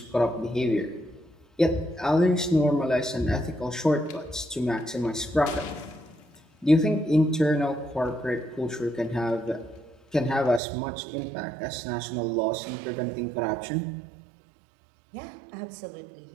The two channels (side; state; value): left; drops out; at 10.6 s